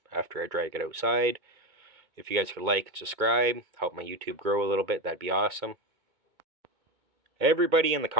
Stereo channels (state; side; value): late; left; 2.2 ms